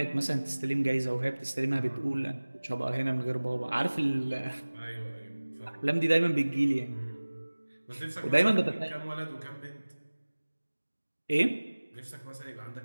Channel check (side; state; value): both; inverted; correlation -1.00